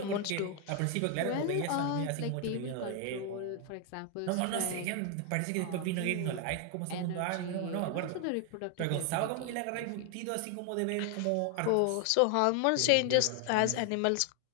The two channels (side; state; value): both; different; correlation 0.00